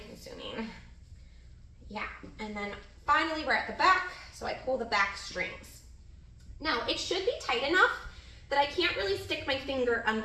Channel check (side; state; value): both; identical; correlation 1.00